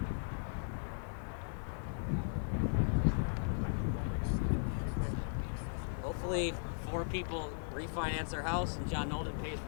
Hopefully 4 people refinance their house and John Nolden pays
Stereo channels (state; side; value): silent; right; 53 dB below the other